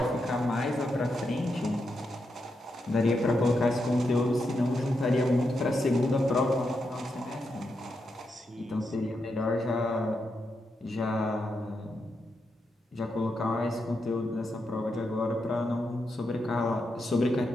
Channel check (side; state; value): both; normal; correlation 0.84